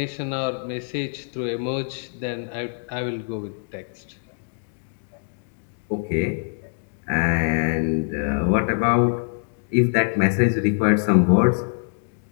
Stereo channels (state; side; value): silent; right; digital silence